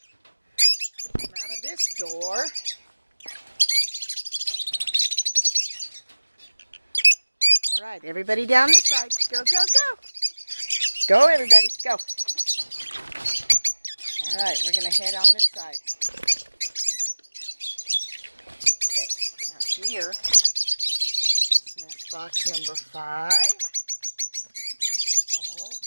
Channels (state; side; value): inverted; both; correlation -1.00